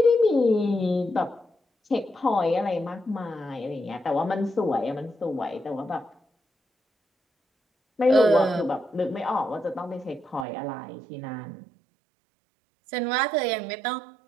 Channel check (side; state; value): left; drops out; at 10.5 s